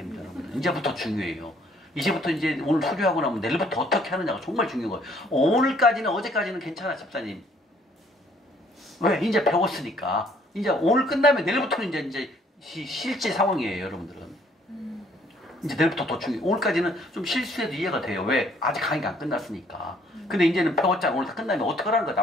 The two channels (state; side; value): normal; both; correlation 0.62